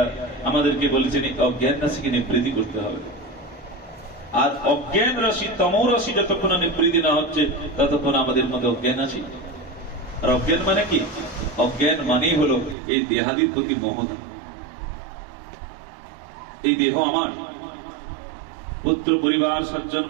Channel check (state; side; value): drops out; left; at 12.8 s